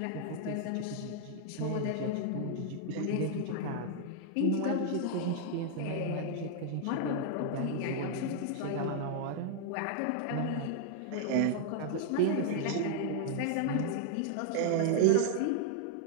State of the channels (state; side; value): different; both; correlation 0.00